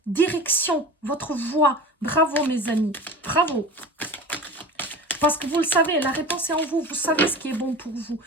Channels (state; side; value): normal; both; correlation 0.34